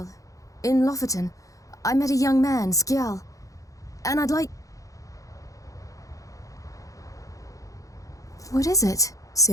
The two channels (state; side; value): late; right; 0.16 ms